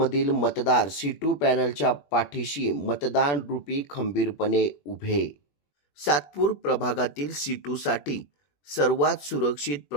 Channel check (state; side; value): late; right; 21 ms